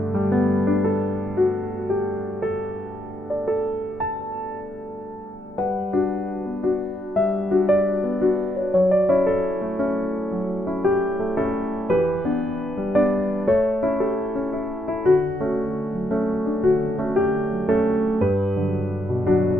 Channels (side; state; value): both; normal; correlation 0.77